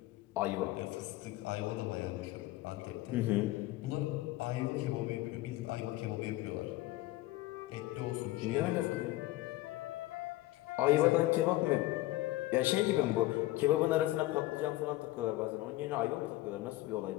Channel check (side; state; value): right; quieter; 17.5 dB